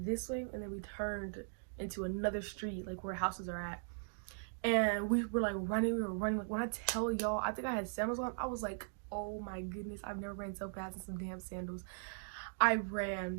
way, and then we turned into another street, like where houses are at, and we were like running. Like, when I tell y'all, I think I had sandals on. I was like, oh my goodness, I've never ran so fast in some damn sandals. I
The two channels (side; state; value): left; silent; digital silence